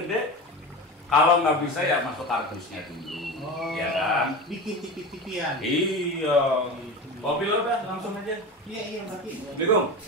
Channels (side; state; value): both; normal; correlation 0.27